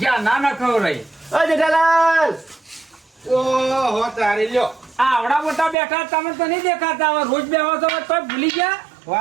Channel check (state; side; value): drops out; left; at 5.8 s